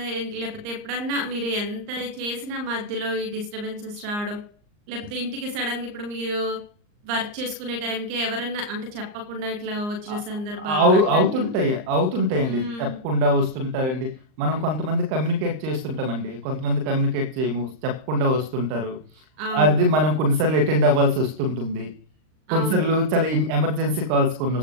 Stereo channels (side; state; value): left; late; 39 ms